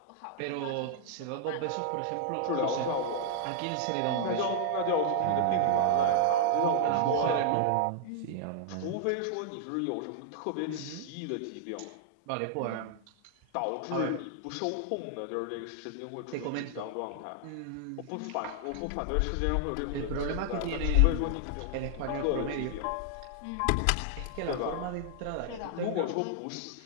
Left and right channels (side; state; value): both; different; correlation -0.01